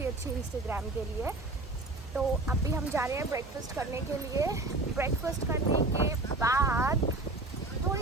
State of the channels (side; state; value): left; quieter; 3.0 dB